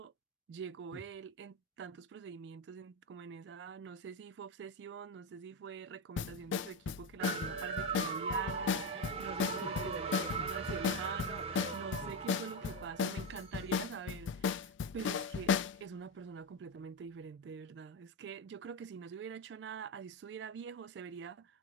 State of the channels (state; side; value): normal; both; correlation 0.11